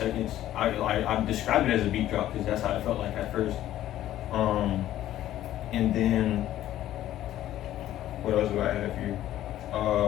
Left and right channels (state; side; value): quieter; right; 13.1 dB